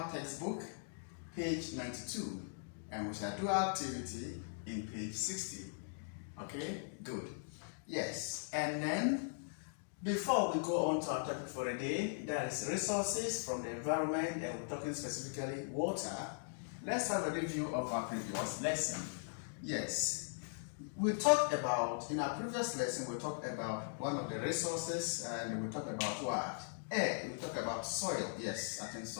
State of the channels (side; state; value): right; silent; digital silence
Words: textbook, page 92, and we shall do our activity in page 60. Okay, good. Yes, and then before we go on to our topic for the day, that is resources from the environment, and we're talking specifically water. Let's have a review of our previous lesson. Yes, we talked about, in our previous lesson, we talked about one of the resources, and we talked about what? Air. We talked about soil. Yes, I think